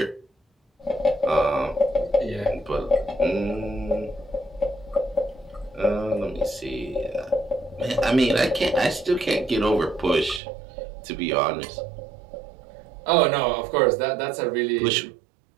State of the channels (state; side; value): drops out; left; at 10.4 s